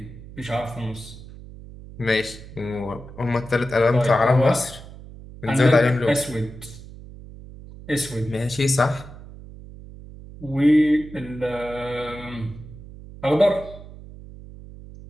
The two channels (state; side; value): noise; right; hum, 16 dB below the sound